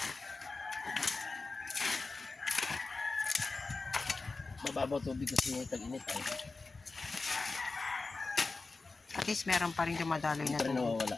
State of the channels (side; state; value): right; quieter; 3.8 dB